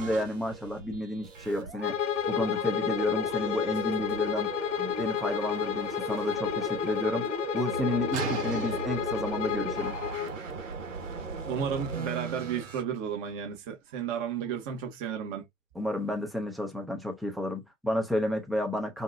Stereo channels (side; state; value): both; normal; correlation 0.45